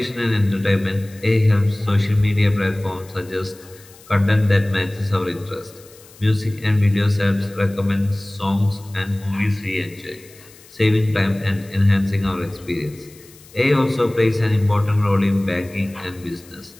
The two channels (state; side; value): noise; left; hiss, 24 dB below the sound